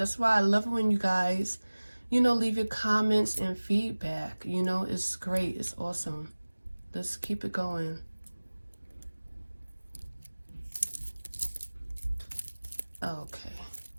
why I love it when you guys, you know, leave your comments and feedback. You know, it's great, it's awesome. Let's keep it going. Okay,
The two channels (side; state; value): both; inverted; correlation -1.00